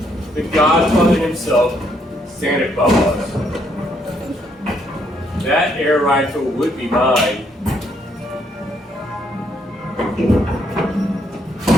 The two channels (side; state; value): both; normal; correlation 0.72